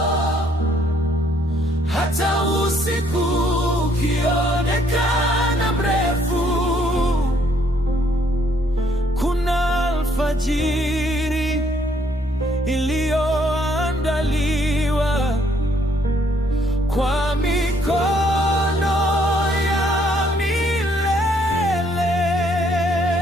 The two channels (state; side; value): normal; both; correlation 0.67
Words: Hata usiku ukionekana mrefu, kuna alfajiri iliyoandaliwa kwa mikono ya milele.